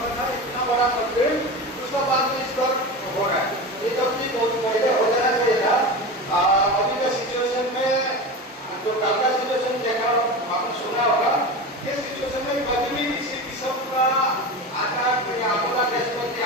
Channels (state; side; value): normal; both; correlation 0.26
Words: इतना बड़ा मॉडल, उसका बाद में इस पर हो रहा है। ये तो भी बहुत पहले हो जाना चाहिए था। अभी के सिचुएशन में जो कल का सिचुएशन देखा आपने सुना होगा, ये सिचुएशन में कभी भी किसी किस्म का आकार या आपदा देश आ